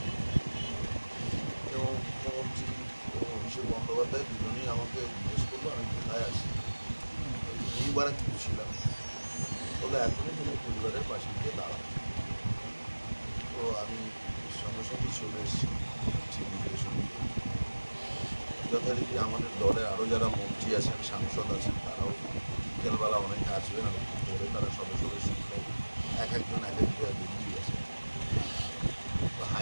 এবং মুখ্যমন্ত্রী এবং অভিষেক বন্দ্যোপাধ্যায় দুজনেই আমাকে জিজ্ঞেস করলো আমি কোথায় আছি। এইবার কিছু ছিলাম বলে এখনই তুমি পরিবারের পাশে গিয়ে দাঁড়াবো। তো আমি সঙ্গে সঙ্গে চলে এসেছি নির্দেশন। যথারীতি আমাদের দলে আরও যারা মন্ত্রী আছেন, সাংসদ আছেন, তারাও বিকেলবেলা অনেকে আসবেন এবং পরে তারা সদস্যদের সঙ্গে এক একজন এক এক জায়গায় বেরিয়ে গেছেন। তো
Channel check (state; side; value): inverted; both; correlation -1.00